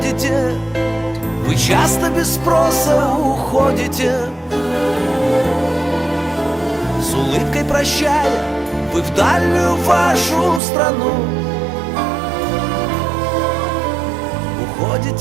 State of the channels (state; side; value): drops out; left; at 10.6 s